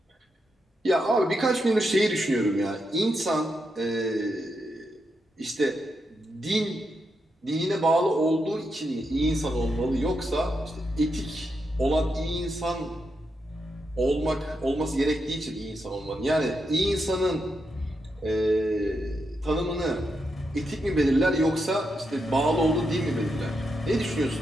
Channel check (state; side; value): normal; both; correlation 0.84